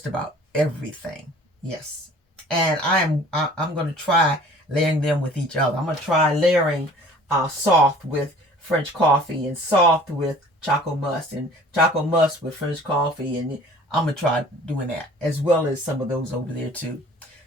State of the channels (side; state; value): both; normal; correlation 0.49